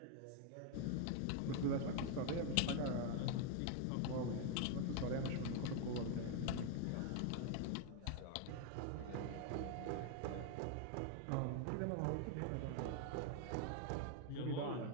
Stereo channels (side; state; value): both; different; correlation 0.00